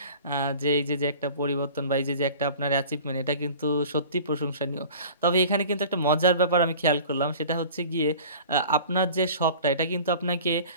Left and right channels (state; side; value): inverted; both; correlation -0.42